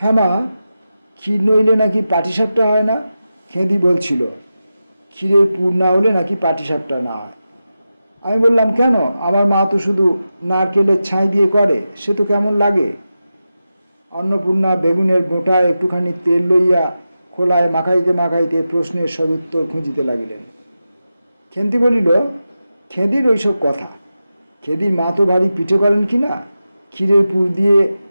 হ্যাঁ মা, ক্ষীর নইলে নাকি পাটিসাপটা হয় না? খেঁদি বলছিল, ক্ষীরের পুর না হলে নাকি পাটিসাপটা না হয়। আমি বললাম, কেন? আমার মা তো শুধু নারকেলের ছাই দিয়ে করে, সে তো কেমন লাগে। অন্নপূর্ণা বেগুনের মোটা একটুখানি তেল লইয়া খোলায় মাখাইতে মাখাইতে প্রশ্নের সদুত্তর খুঁজিতে লাগিলেন। খেন্তি বলিল, খেদির ওইসব কথা। খেদির মা তো ভারী পিঠে করেন কি না? ক্ষীরের পুর দিয়ে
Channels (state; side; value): inverted; both; correlation -0.92